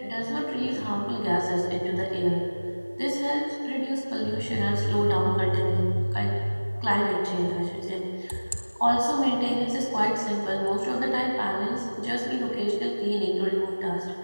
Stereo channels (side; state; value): both; inverted; correlation -1.00